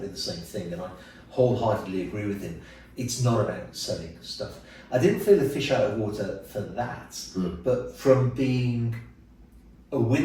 the same thing, and I wholeheartedly agree with him. It's not about selling stuff. I didn't feel a fish out of water for that, but from being a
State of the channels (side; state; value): both; identical; correlation 1.00